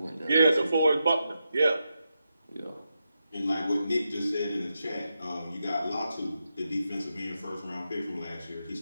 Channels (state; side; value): inverted; both; correlation -0.86